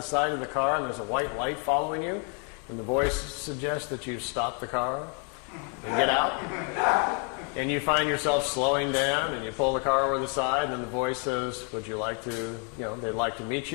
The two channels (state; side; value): quieter; right; 39.2 dB